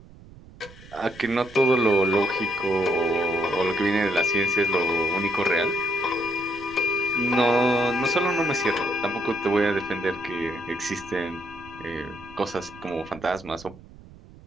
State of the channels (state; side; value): noise; right; rumble, 20 dB below the sound